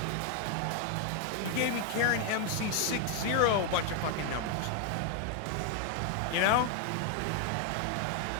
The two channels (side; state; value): both; different; correlation 0.00